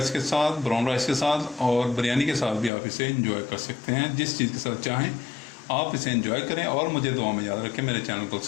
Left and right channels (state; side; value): drops out; right; at 2.7 s